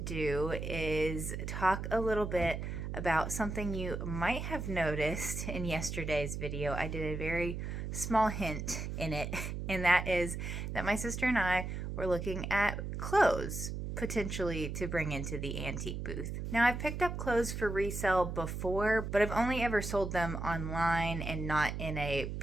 is talk a little bit about something you might have noticed in yesterday's video. I did a very small hint in it, and that is that my sister and I were looking at clothes potentially to bring into the antique booth. Now, I've picked up clothes for resale before, but I've only ever sold them online and not in a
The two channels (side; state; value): right; noise; hum, 5 dB below the sound